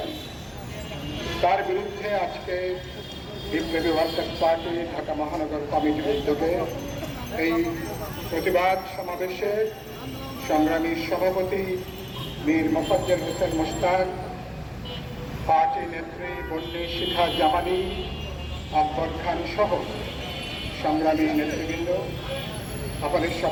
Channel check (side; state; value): both; identical; correlation 1.00